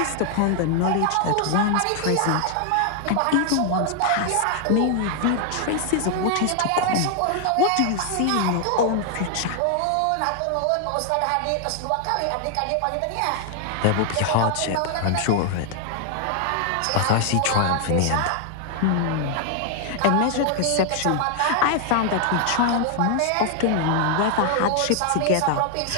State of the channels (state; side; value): different; both; correlation 0.00